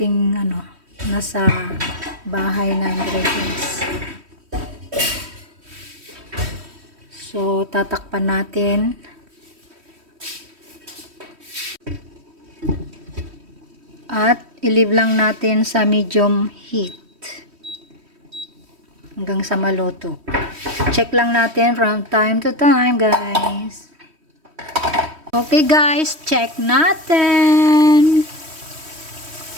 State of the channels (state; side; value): late; left; 3.1 ms